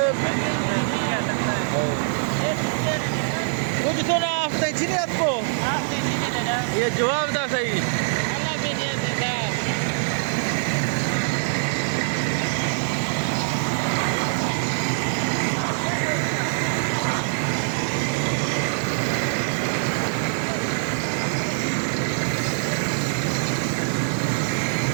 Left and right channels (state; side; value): silent; left; 63 dB below the other